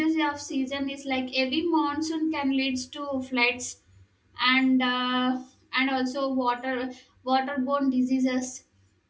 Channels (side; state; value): both; identical; correlation 1.00